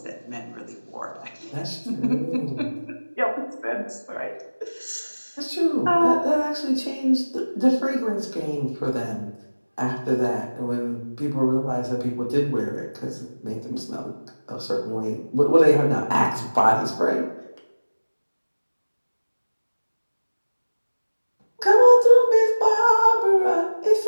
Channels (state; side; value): inverted; both; correlation -1.00